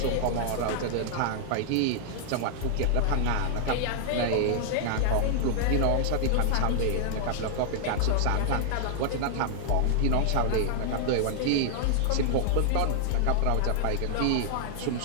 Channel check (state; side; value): different; both; correlation -0.01